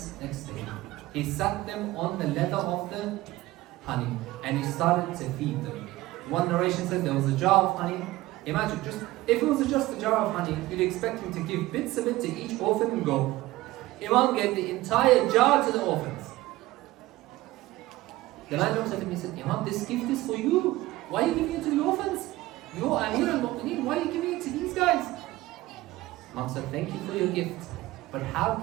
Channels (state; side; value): quieter; left; 17.8 dB